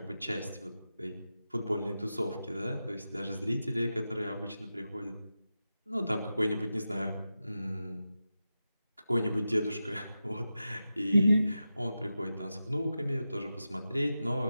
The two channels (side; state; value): both; inverted; correlation -0.91